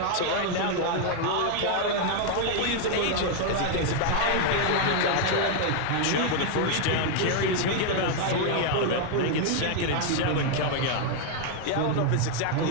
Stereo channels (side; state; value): both; different; correlation 0.00